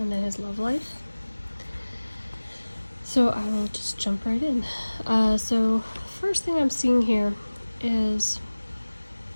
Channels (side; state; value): both; inverted; correlation -1.00